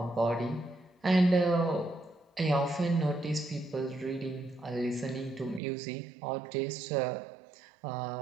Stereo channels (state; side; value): drops out; left; at 5.6 s